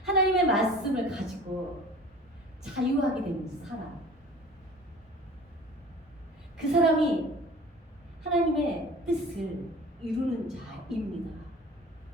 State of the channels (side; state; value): both; normal; correlation 0.43